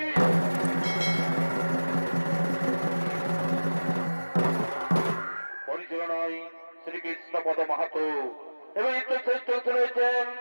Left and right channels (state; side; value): inverted; both; correlation -1.00